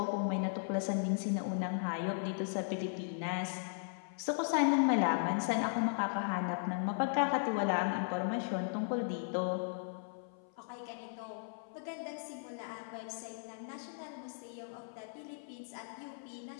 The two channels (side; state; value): right; silent; 53 dB below the other